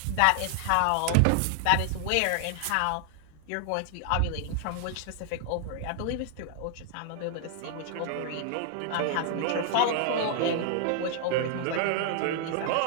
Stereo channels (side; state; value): both; different; correlation 0.00